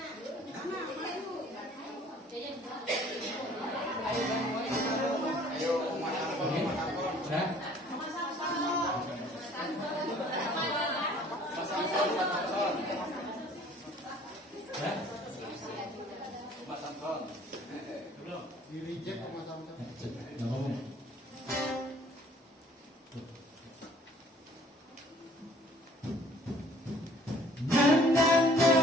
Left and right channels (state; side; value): normal; both; correlation 0.54